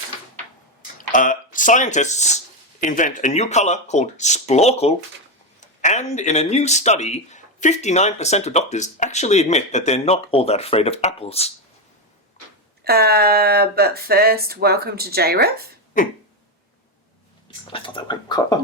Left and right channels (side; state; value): both; normal; correlation 0.10